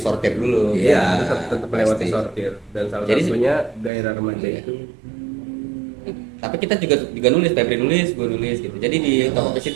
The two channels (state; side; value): drops out; left; at 3.9 s